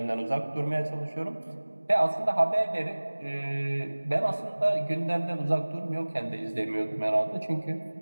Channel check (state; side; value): inverted; both; correlation -1.00